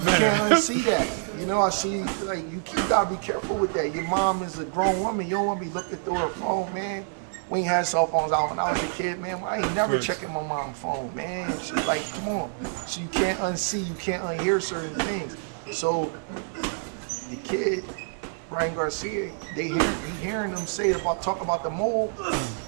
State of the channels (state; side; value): silent; left; digital silence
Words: man. You can't unsee that. I see, like, you gotta be careful with that. Your mom is a grown woman. You don't wanna be looking through her phone, man. We ain't had cell phones out when I was a kid, man. I ain't never checking my mom's phone, man. She's like, come on. So you can't unsee, you can't unhear certain things. So the kid, Ryan Garcia, he hearing them talk about the mole.